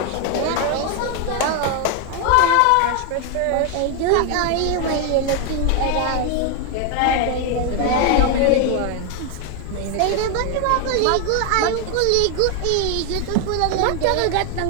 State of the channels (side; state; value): both; different; correlation 0.01